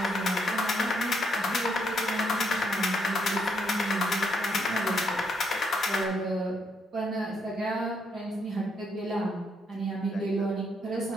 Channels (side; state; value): both; normal; correlation 0.74